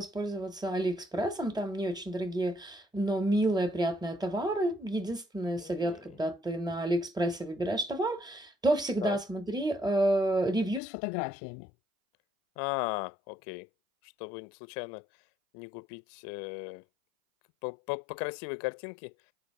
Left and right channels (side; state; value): right; drops out; at 10.8 s